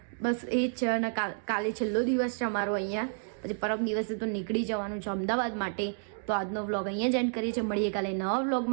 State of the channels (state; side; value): silent; left; digital silence